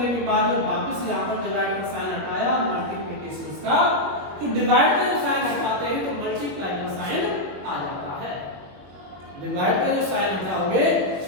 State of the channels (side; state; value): left; late; 21 ms